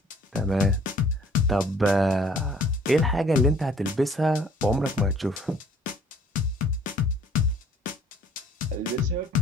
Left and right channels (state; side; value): normal; both; correlation 0.56